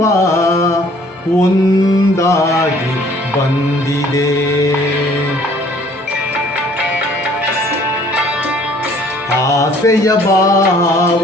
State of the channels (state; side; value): normal; both; correlation 0.57